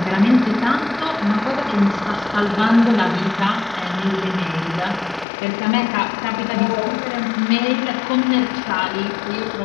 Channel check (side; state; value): right; drops out; at 5.2 s